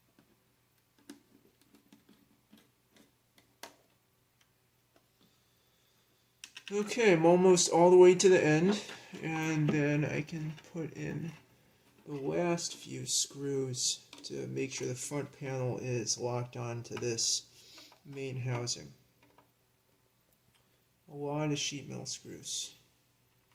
Okay, I'm almost all the way to the end, and then I can put in the last few screws to make sure the front panel is locked onto this main housing. A lot of sheet metal screws.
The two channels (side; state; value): both; identical; correlation 1.00